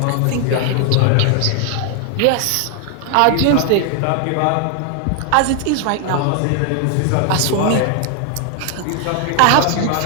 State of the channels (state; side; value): different; both; correlation 0.00